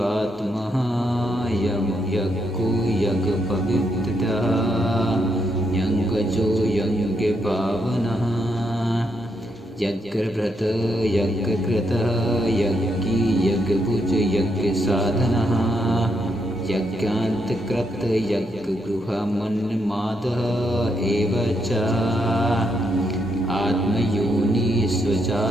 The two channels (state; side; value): normal; both; correlation 0.78